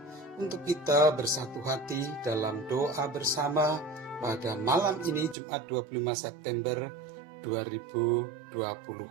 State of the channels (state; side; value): drops out; left; at 5.4 s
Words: untuk kita bersatu hati dalam doa bersama pada malam ini Jumat 25 September